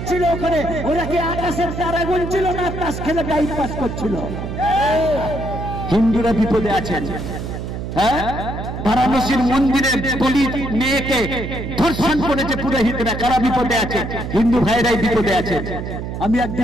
ওখানে? ওরা কি আকাশের তারা গুনছিল না তাস খেলে টাইম পাস করছিল? হিন্দুরা বিপদে আছেন। হ্যাঁ, বারাণসীর মন্দিরে দলিত মেয়েকে ধর্ষণ করেছে পুরোহিতরা, কারা বিপদে আছে? হিন্দু ভাইরাই বিপদে আছে। আমি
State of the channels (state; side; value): noise; right; hum, 6 dB below the sound